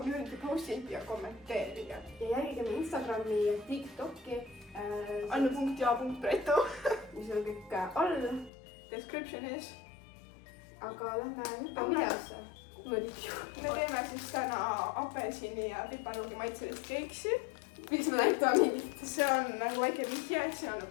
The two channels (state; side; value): drops out; right; at 8.5 s